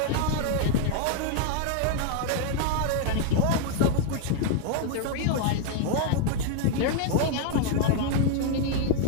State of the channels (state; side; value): different; both; correlation 0.00